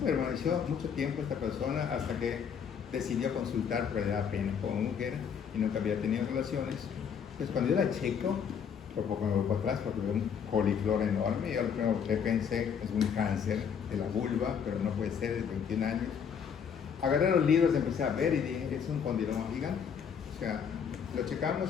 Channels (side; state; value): right; quieter; 7.3 dB